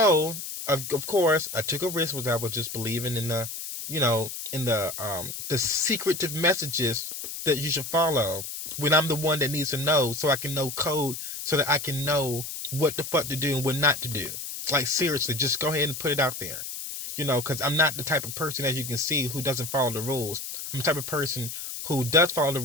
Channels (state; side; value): noise; left; hiss, 7 dB below the sound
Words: of course, I took a risk, was I was just believing in the secretive messages that you should follow when I'm the one that needs to know, so I can know code, so that I can know what the fuck to do and what not to do. Like, seriously, just go ahead and put it out there. Because I'm not the type of person, as you can see, who doesn't follow the rules. I'm the type of person who does follow the